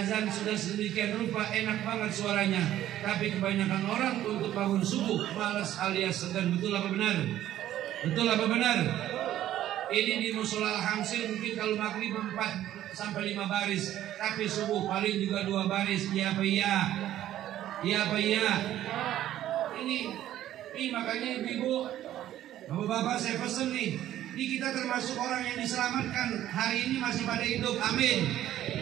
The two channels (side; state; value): left; quieter; 12.7 dB